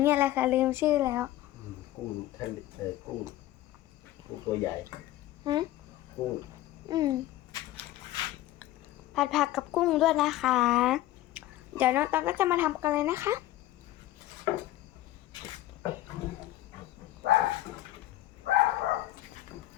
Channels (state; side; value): quieter; right; 15.0 dB